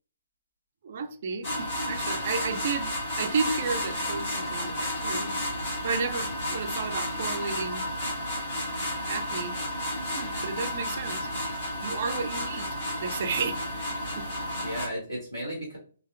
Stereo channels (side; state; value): both; inverted; correlation -0.63